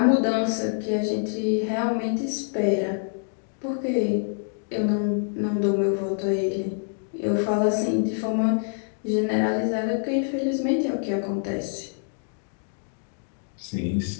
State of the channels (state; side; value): silent; right; digital silence